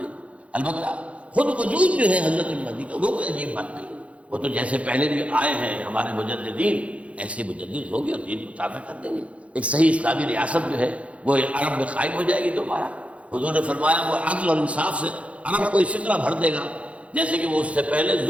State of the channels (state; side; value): late; left; 0.063 ms